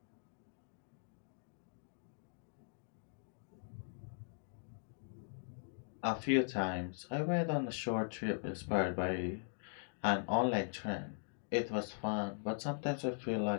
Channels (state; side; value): silent; right; digital silence